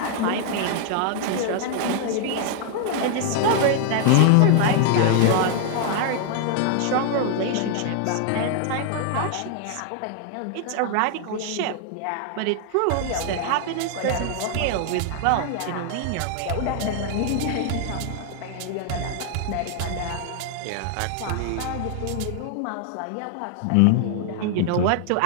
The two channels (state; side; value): different; both; correlation 0.00